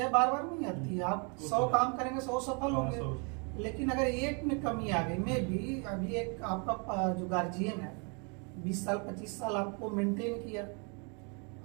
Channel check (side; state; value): left; quieter; 35.1 dB